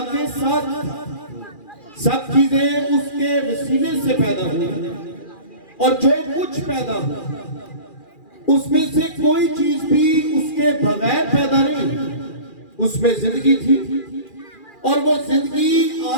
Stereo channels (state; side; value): late; right; 2.4 ms